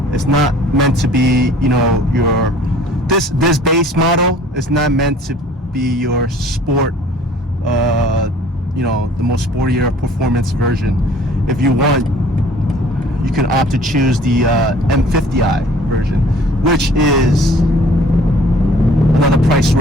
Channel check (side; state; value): both; normal; correlation 0.52